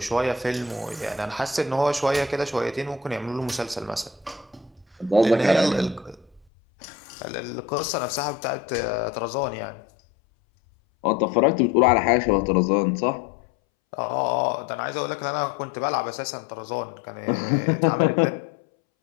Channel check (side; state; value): right; drops out; at 6.5 s